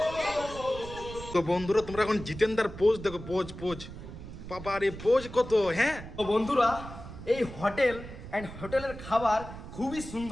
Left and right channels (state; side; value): noise; right; rumble, 12 dB below the sound